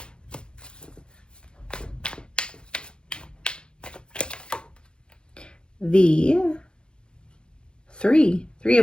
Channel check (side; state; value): right; late; 0.051 ms